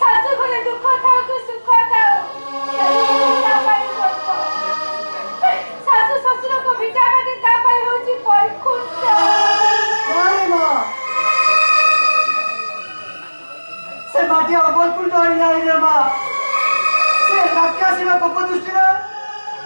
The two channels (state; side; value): inverted; both; correlation -1.00